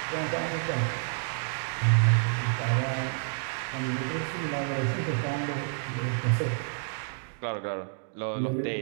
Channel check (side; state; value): left; silent; 58 dB below the other